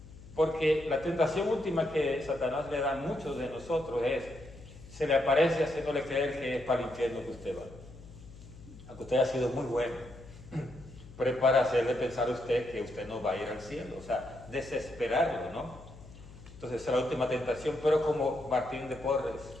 Porque la tentación última que Satanás le da a muchos de nosotros es, se le aparece haciéndole creer que es para el infierno que usted va. Aunque usted ha sido muy bueno, pero es para hacerle pensar a usted que usted no va a ir al cielo. O sea, desesperarlo, ¿no? Entonces esa es la última tentación. Pero como Martín de Porres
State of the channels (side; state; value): left; noise; hum, 18 dB below the sound